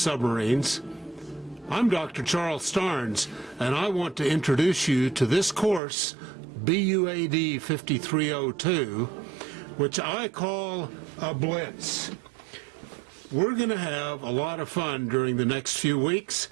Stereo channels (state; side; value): drops out; left; at 5.8 s